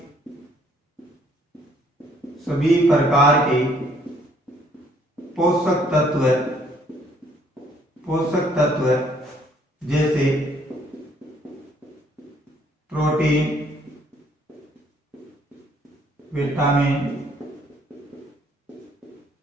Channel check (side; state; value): both; normal; correlation 0.64